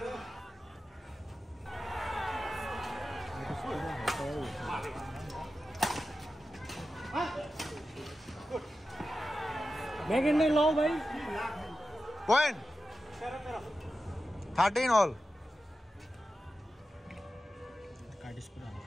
ব্যাগেন্ড লাও ভাই পয়েন্ট 13 all কাটিস পুরা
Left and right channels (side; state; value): both; normal; correlation 0.92